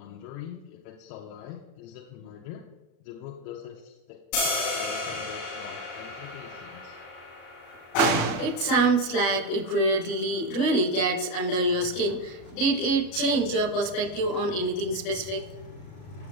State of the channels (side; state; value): right; late; 38 ms